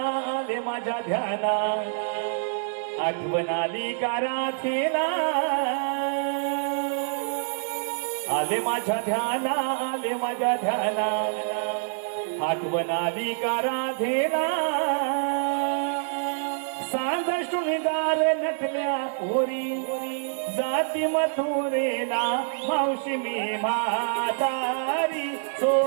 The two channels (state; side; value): silent; left; digital silence